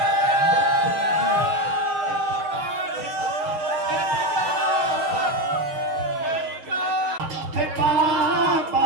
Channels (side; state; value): left; late; 6.5 ms